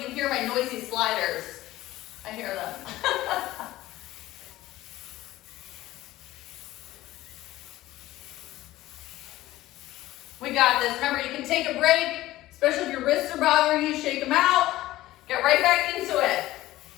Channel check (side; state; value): right; quieter; 16.3 dB